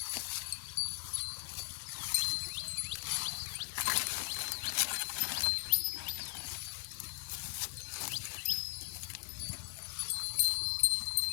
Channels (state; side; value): silent; right; digital silence